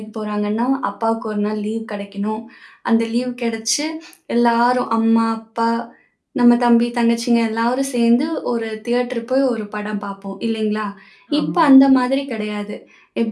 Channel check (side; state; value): both; identical; correlation 1.00